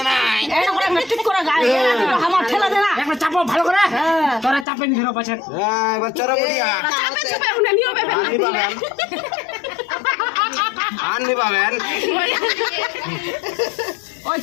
নাই এই করে মেট্রিক করে গাড়ি আমার ঠেলা দে না একটা চাপো ভালো করে তোরা চাপে নি ধরো পাছে এবার চরবড়িয়া চাপে চাপে উনি নিও বেবে আনবি পাবেন ওই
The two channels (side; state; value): right; drops out; at 4.7 s